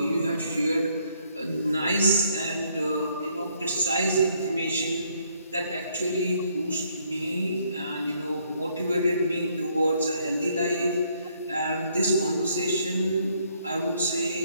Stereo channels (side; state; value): both; inverted; correlation -0.69